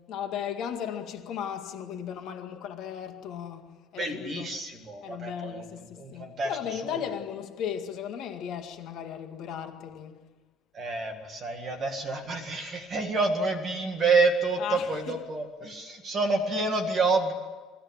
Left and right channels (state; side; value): normal; both; correlation 0.60